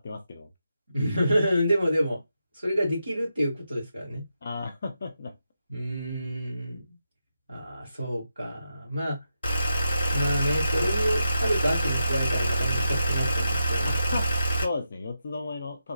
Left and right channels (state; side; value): inverted; both; correlation -0.86